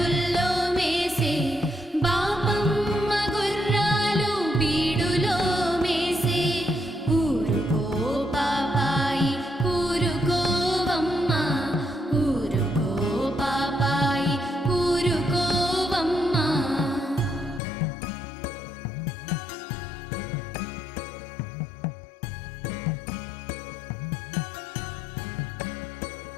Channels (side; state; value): right; drops out; at 17.6 s